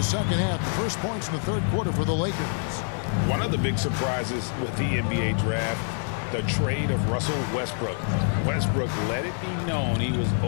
second half. The first points in the third quarter for the Lakers. One of the big surprises with the NBA draft, the trade of Russell Westbrook. Westbrook let it be known he was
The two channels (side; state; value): right; silent; 61 dB below the other